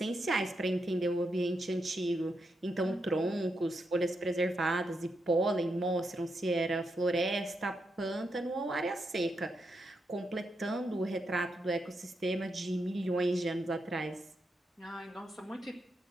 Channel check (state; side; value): normal; both; correlation 0.83